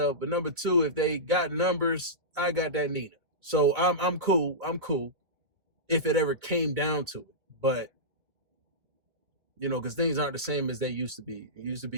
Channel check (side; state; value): left; late; 1.9 ms